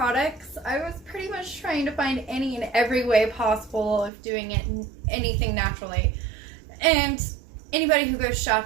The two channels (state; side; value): drops out; left; at 4.1 s